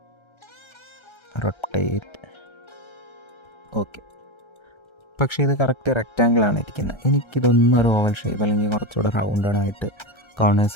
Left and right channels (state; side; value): late; right; 1.3 ms